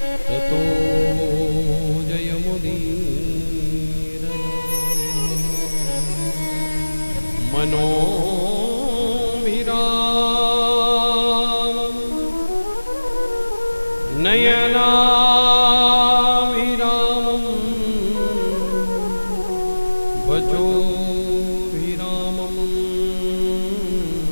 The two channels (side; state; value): both; inverted; correlation -1.00